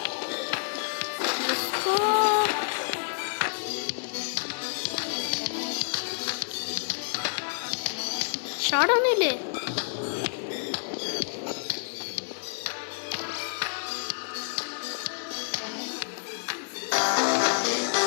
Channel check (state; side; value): silent; right; digital silence